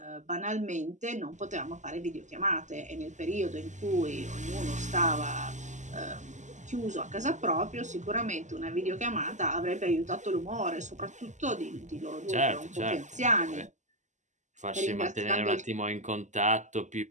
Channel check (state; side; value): late; left; 0.34 ms